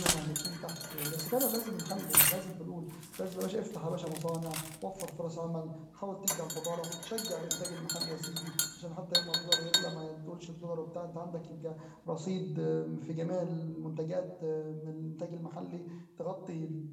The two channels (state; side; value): identical; both; correlation 1.00